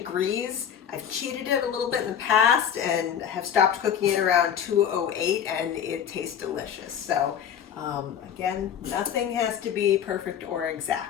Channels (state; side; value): quieter; right; 8.7 dB